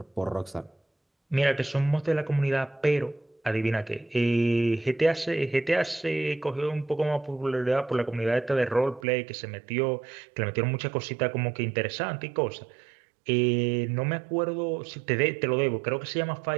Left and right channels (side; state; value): left; drops out; at 9.1 s